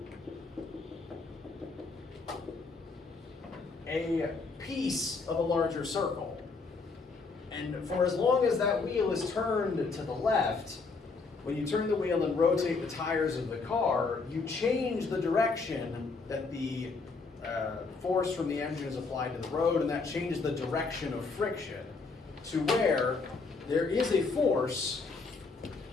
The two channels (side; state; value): right; quieter; 4.2 dB